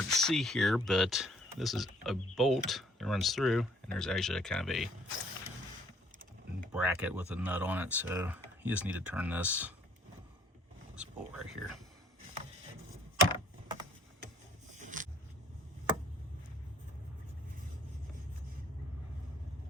to see here, but this is a bolt that runs through, and there's actually a kind of a bracket with a nut on it, so you just need to turn this bolt right here.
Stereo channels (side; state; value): both; normal; correlation 0.60